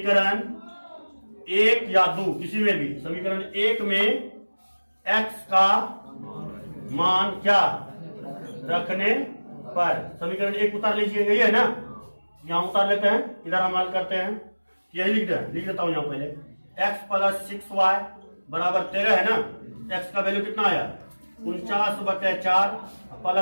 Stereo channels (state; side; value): inverted; both; correlation -1.00